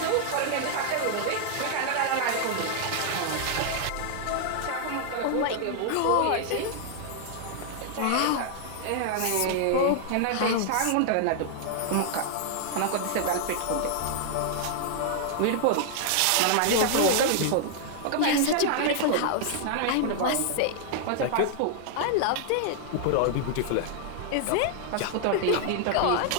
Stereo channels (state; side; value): different; both; correlation 0.00